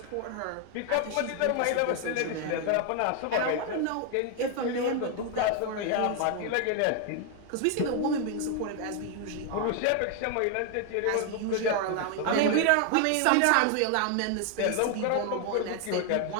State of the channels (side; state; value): both; different; correlation 0.01